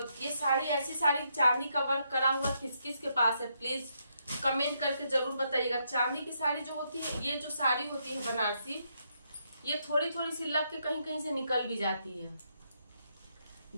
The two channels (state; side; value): inverted; both; correlation -0.77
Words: ये साड़ी, ऐसी साड़ी चांदी का वर्क करा हुआ किस किस के पास है, प्लीज कमेंट करके जरूर बताइएगा। चांदी की साड़ी जो होती है, ये जो साड़ी होती है बनारसी, ये थोड़ी थोड़ी सी लग के कहीं कहीं से निकल भी जाती है।